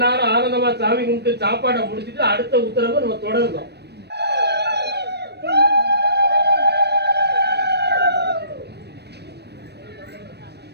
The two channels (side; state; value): left; late; 0.48 ms